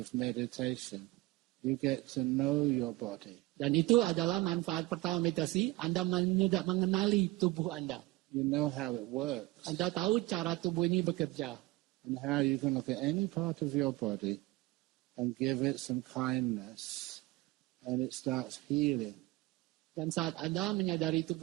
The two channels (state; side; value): quieter; left; 20.1 dB